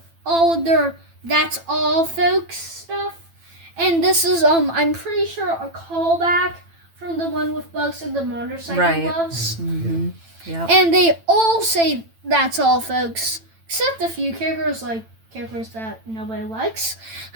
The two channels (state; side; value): late; left; 9.0 ms